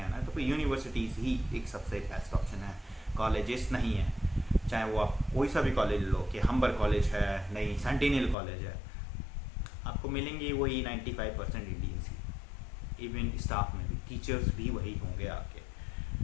आना है, तो फिर यूनिवर्सिटीज़ ही एक सबसे बेस्ट ऑप्शन है, कॉलेजेस नहीं है। चाहे वो आप कोई सा भी कॉलेज लो, कि हम्बर कॉलेज है, नहीं सेंटिनल कॉलेज है, आपको मिलेंगे वही 95% इंडियंस ही। इवन स्टाफ में भी टीचर्स भी वही होंगे आपके।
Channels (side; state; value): right; drops out; at 8.3 s